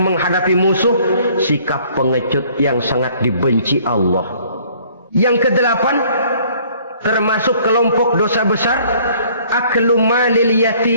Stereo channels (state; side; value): inverted; both; correlation -0.58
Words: menghadapi musuh, sikap pengecut yang sangat dibenci Allah. Yang kedelapan, termasuk kelompok dosa besar, aklu malil